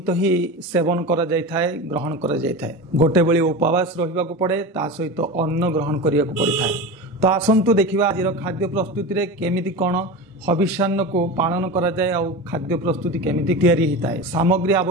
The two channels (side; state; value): both; normal; correlation 0.27